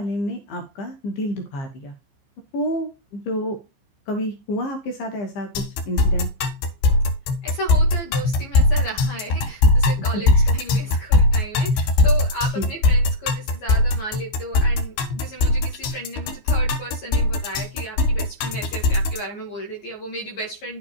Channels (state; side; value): late; right; 15 ms